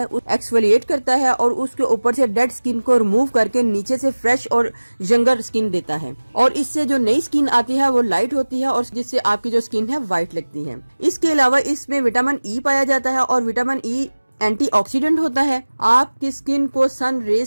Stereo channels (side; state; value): both; inverted; correlation -1.00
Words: एक्सफोलिएट करता है और उसके ऊपर से डेड स्किन को रिमूव करके नीचे से फ्रेश और यंगर स्किन देता है, और इससे जो नई स्किन आती है वो लाइट होती है और जिससे आपकी जो स्किन है वाइट लगती है। इसके अलावा इसमें विटामिन ई पाया जाता है और विटामिन ई एंटीऑक्सीडेंट होता है, आपकी स्किन को सन रेज